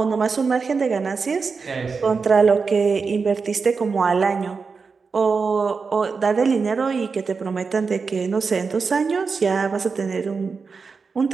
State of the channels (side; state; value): left; quieter; 5.0 dB